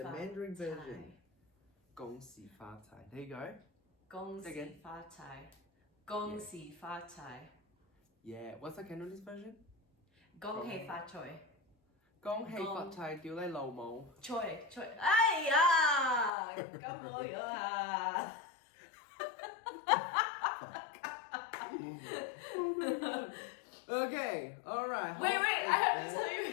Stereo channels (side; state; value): right; drops out; at 16.3 s